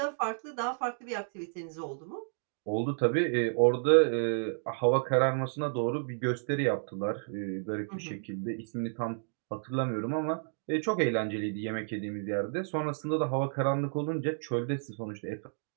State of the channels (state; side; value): silent; left; digital silence